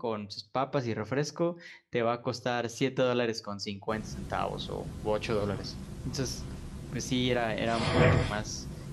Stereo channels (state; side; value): identical; both; correlation 1.00